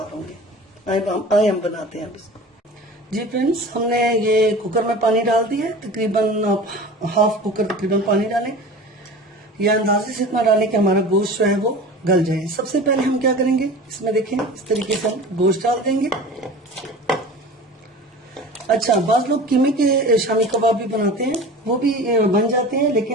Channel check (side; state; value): both; normal; correlation 0.37